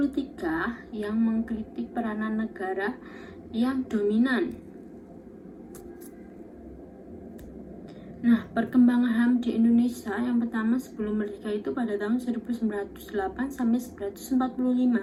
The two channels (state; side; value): identical; both; correlation 1.00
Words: yang mengkritik peranan negara yang dominan. Nah, perkembangan HAM di Indonesia yang pertama sebelum merdeka itu pada tahun 1908 sampai